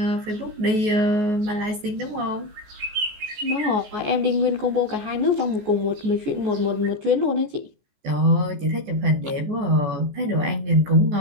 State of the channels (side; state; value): left; late; 14 ms